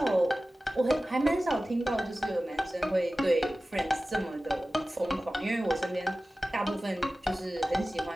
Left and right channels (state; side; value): normal; both; correlation 0.96